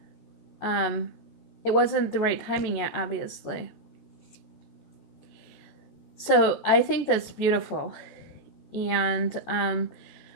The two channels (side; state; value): right; late; 14 ms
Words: it wasn't the right timing yet, obviously. So I think that's beautiful, and